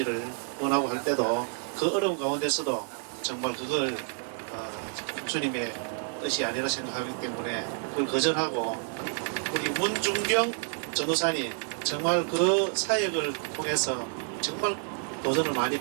원하고 할 때도 그 어려운 가운데서도 정말 그걸 주님의 뜻이 아니라 생각하기 때문에 그걸 거절하고 우리 문중경 전도사님 정말 그 사역을 통해서 정말 도전을 많이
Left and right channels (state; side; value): silent; left; 59 dB below the other